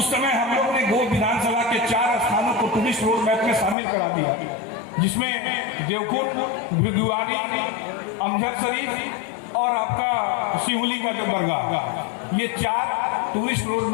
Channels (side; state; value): right; drops out; at 3.8 s